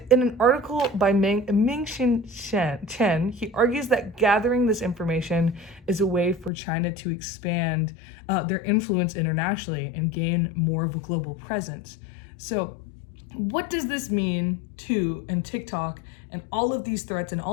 in an article by Ming-Xin Chen, he argues that gathering this information is a way for China to expand their influence internationally and gain more of a global presence. So what does this mean to TikTok and all of these threats and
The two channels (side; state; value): right; drops out; at 6.5 s